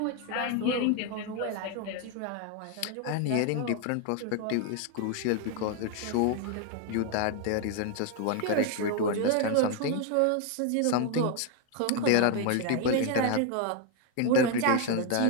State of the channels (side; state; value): both; different; correlation 0.01